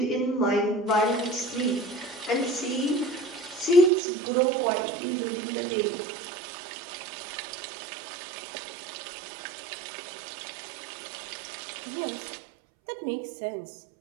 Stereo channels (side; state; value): left; drops out; at 3.9 s